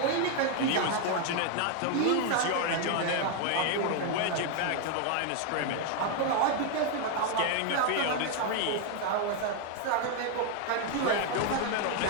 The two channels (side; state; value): both; different; correlation 0.01